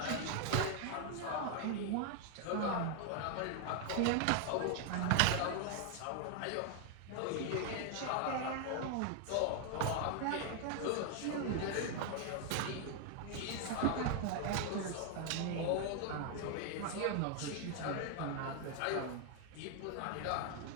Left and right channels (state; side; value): different; both; correlation 0.00